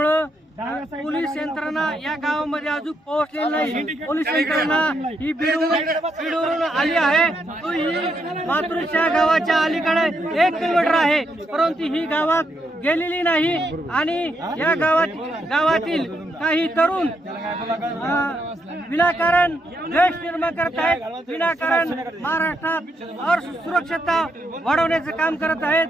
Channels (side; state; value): both; normal; correlation 0.78